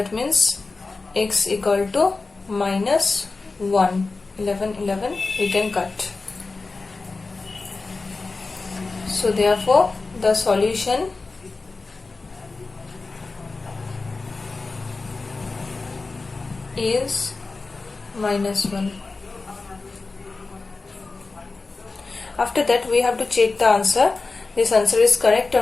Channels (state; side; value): quieter; right; 3.8 dB